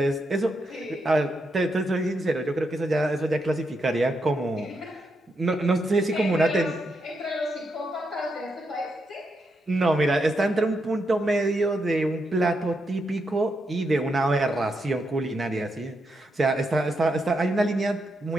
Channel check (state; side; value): normal; both; correlation 0.82